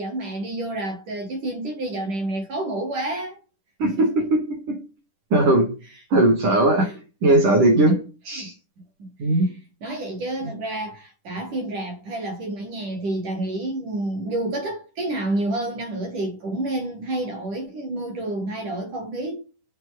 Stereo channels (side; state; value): left; late; 10 ms